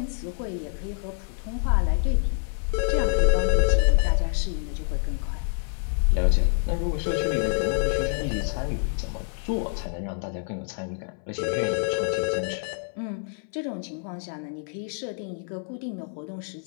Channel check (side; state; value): right; silent; 60 dB below the other